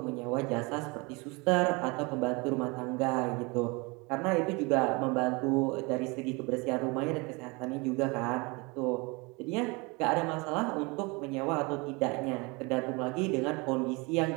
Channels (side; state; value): left; quieter; 27.3 dB